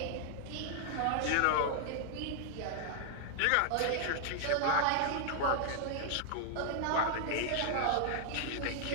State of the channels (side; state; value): both; different; correlation 0.00